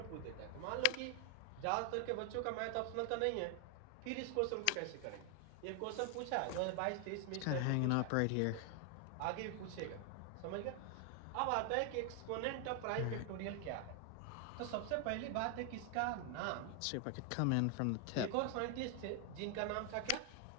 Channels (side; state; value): both; different; correlation 0.00